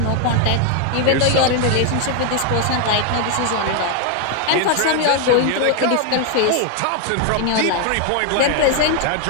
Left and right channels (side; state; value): both; different; correlation 0.00